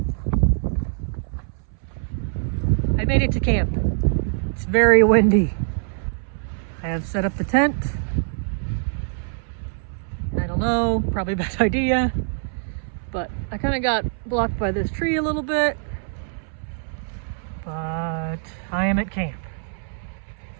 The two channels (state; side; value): silent; left; 63 dB below the other